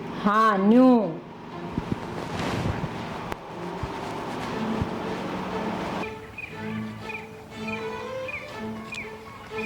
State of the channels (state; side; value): identical; both; correlation 1.00